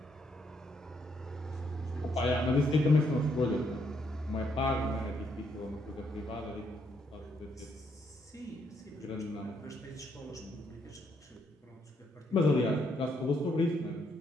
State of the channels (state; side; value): normal; both; correlation 0.74